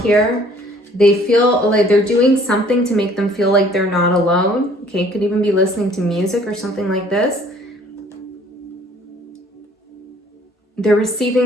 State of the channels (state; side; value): normal; both; correlation 0.56